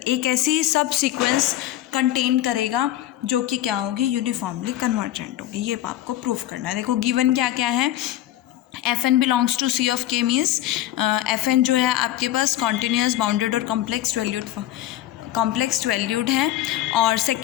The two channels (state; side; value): quieter; right; 13.7 dB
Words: ऐसी सब सीक्वेंस कंटेन करेगा जो कि क्या होगी, यूनिफॉर्मली कन्वर्जेंट होगी। ये आपको प्रूव करना है। देखो गिवन क्या क्या है, f n belongs to C of K means f n जो है आपके पास कॉन्टीन्यूस बाउंडेड और कॉम्प्लेक्स वैल्यूड है। और